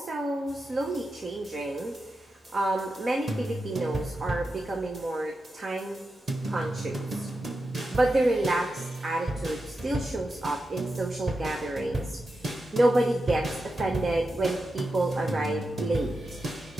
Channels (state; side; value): normal; both; correlation 0.89